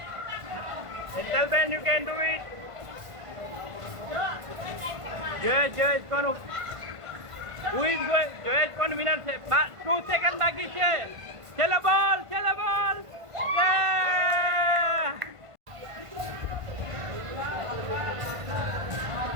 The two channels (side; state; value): left; late; 1.5 ms